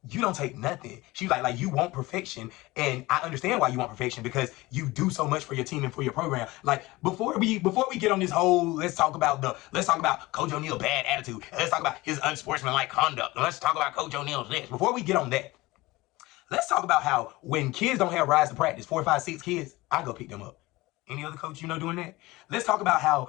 you don't take nothing. She was like you want perfection. And I understand why you want perfection because you do so much for your team and for your program. Like, before we get on this whole, let's talk about Coach O'Neal bad attitude. Let's talk about his unsportsmanlike conduct. Let's talk about Coach O'Neal's this. Before we get on that, let's talk about how when kids don't have rides to practice, 4, 5, 6 kids, I go pick them up. Any other coach doing that? Let's talk about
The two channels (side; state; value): right; quieter; 20.4 dB